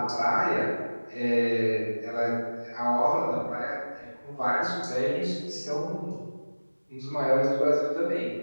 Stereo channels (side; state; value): both; inverted; correlation -1.00